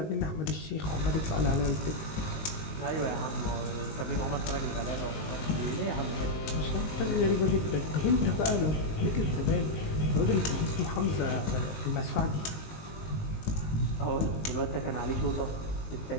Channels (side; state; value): right; late; 19 ms